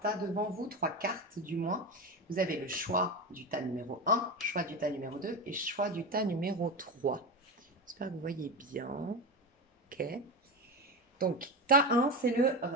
tas devant vous, 3 cartes du moins. Vous avez le choix du tas numéro 1, choix du tas numéro 2 et choix du tas numéro 3. J'espère que vous voyez bien. Ok. Donc, tas 1, c'est le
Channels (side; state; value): both; normal; correlation 0.19